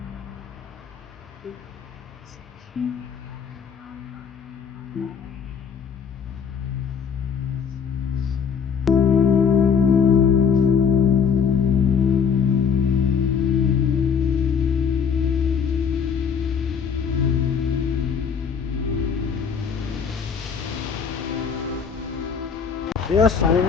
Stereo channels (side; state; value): right; quieter; 6.6 dB